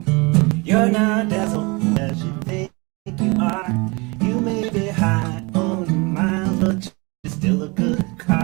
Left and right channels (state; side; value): quieter; left; 27.1 dB